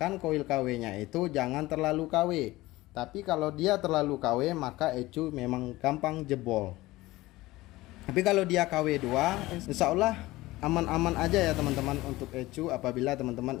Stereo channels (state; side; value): quieter; right; 18.7 dB